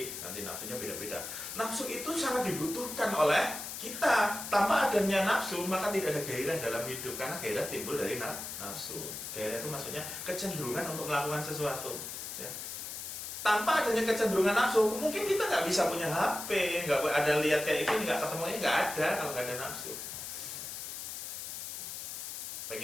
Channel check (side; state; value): left; noise; hiss, 7 dB below the sound